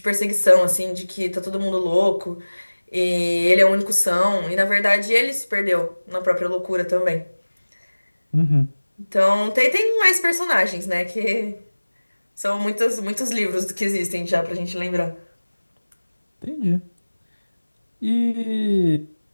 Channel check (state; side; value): inverted; both; correlation -1.00